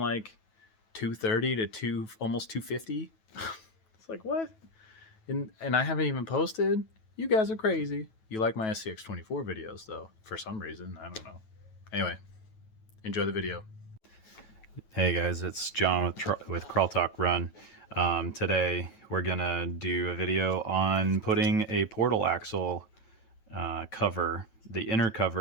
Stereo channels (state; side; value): late; right; 9.2 ms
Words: like 230 to almost 250. It's like, what? And I haven't even posted? You guys are crazy. You like my SCX24 videos, though, for some reason. I don't know. Anyway, enjoy the video. Hey guys, it's John with Crawl Talk Run. Today we're gonna do a video on putting a portal axle cover, the inner